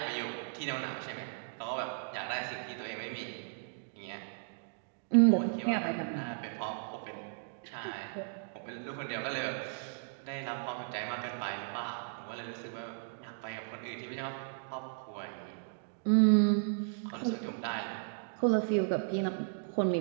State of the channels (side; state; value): left; silent; digital silence